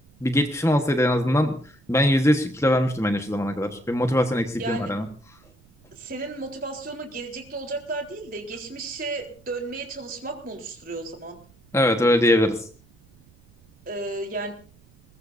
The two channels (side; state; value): right; noise; rumble, 29 dB below the sound